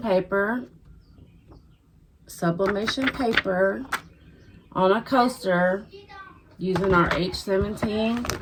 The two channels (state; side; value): identical; both; correlation 1.00